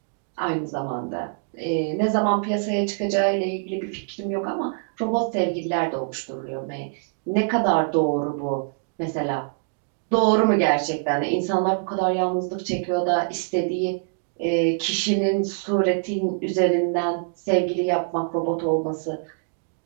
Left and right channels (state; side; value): silent; left; digital silence